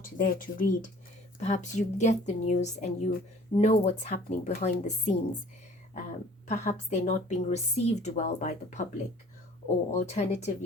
there to read. Perhaps you get the news and you know what's happening behind the scenes. Perhaps they're not being received well by the public, or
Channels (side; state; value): both; normal; correlation 0.51